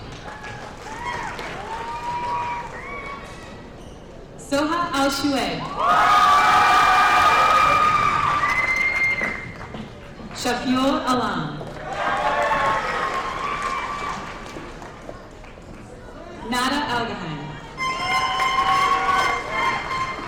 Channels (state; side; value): identical; both; correlation 1.00